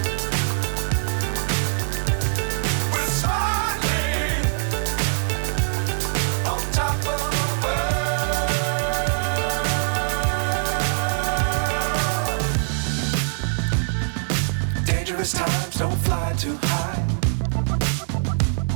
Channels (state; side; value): silent; left; digital silence